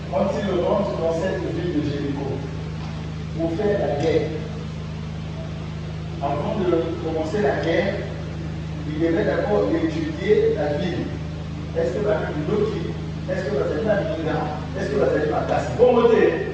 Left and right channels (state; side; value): identical; both; correlation 1.00